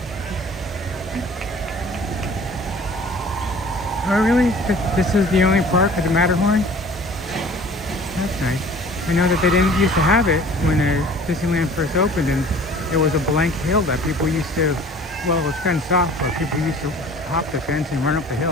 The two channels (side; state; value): both; normal; correlation 0.47